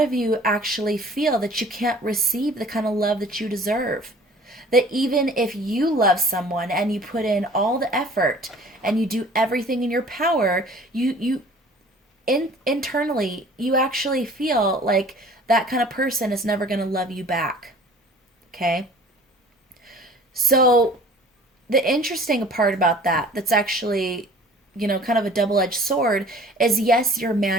you actually feel that you can't receive the kind of love that you deserve. That even if you love someone and you put in all the effort and you do everything in your power, internally, you actually feel like that kind of person is never going to love you back. Okay? So, the interesting part about that's actually, kind of a double-edged sword is yes, you're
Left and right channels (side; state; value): both; normal; correlation 0.48